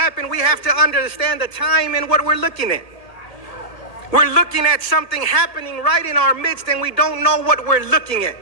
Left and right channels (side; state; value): right; late; 1.8 ms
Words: we have to understand the time and what we're looking at. We're looking at something happening right in our midst, and we don't know what we're looking at.